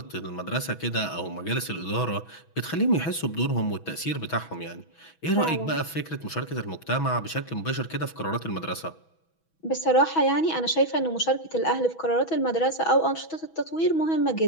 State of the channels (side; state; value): right; late; 6.2 ms